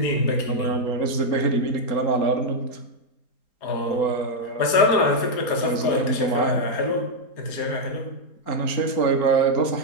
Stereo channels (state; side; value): late; right; 4.3 ms